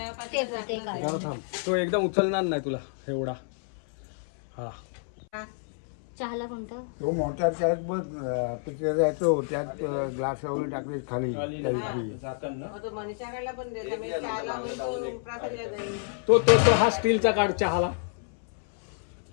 ते काढ. जरा थांब तो एकदम उचलणार नाही तुला एवढा हा चहाला कोणतं तो मोठा त्यात बघ पिक्चर जायचो त्यात ग्लास वगैरे टाकले खाली मनीषाकडला पण देता मी चहाला होईल तो प्रासादला जाईल तो तो तो हा स्टीलचा काढ चहाला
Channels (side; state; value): right; silent; 59 dB below the other